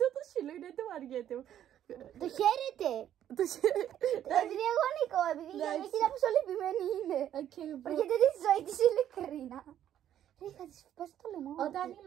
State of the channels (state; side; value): quieter; left; 10.9 dB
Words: το σύλλο είναι το βαριέται. Το χαίρεται. Επειδή εγώ νικώ, επειδή η γιαγιά κοίτα πόσο λυπημένη είναι. Βαριέται τη ζωή της ειλικρίνα. Ρε, θα της πας το λαιμό. Όταν η